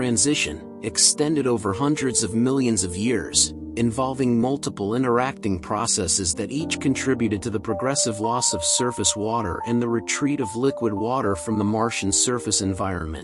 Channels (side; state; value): both; identical; correlation 1.00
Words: extended over hundreds of millions of years, involving multiple interacting processes that each contributed to the progressive loss of surface water and the retreat of liquid water from the Martian surface